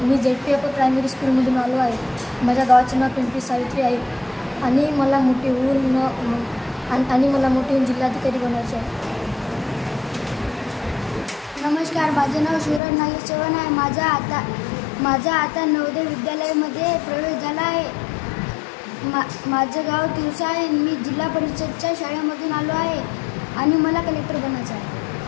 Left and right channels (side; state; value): right; drops out; at 12.8 s